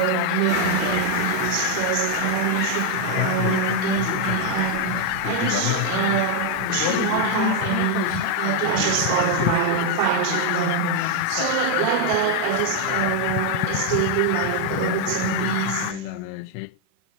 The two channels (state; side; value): different; both; correlation 0.00